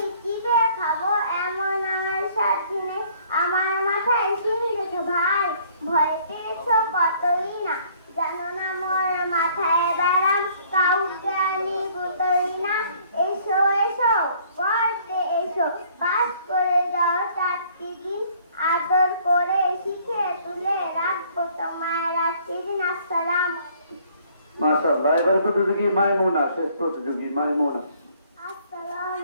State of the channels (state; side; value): inverted; both; correlation -0.59